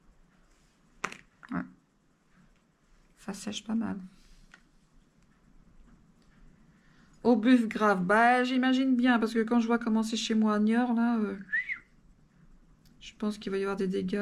Ouais. Ça sèche pas mal. Au buff grave, bah j'imagine bien, parce que quand je vois comment c'est chez moi à Niort, là, je pense qu'il va y avoir des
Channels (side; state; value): both; identical; correlation 1.00